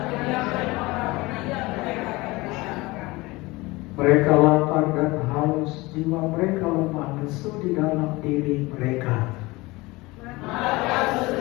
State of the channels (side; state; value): right; quieter; 22.0 dB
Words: Mereka lapar dan haus, jiwa mereka lemah lesu di dalam diri mereka.